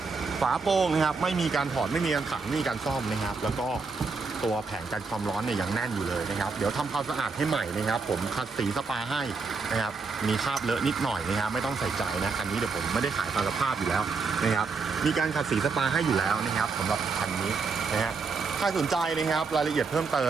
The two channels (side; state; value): left; quieter; 4.6 dB